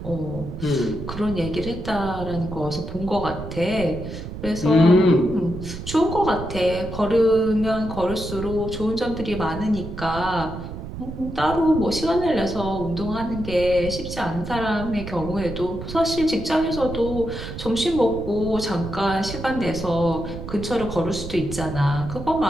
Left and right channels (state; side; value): noise; right; rumble, 9 dB below the sound